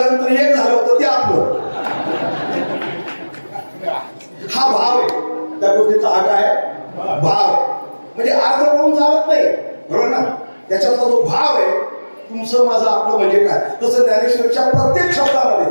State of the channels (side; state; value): both; inverted; correlation -1.00